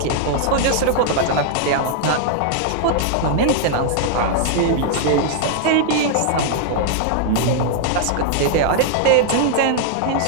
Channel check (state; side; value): different; both; correlation -0.01